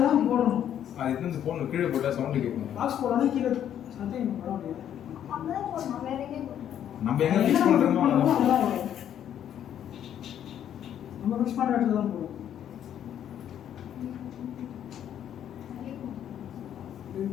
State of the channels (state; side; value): quieter; right; 10.1 dB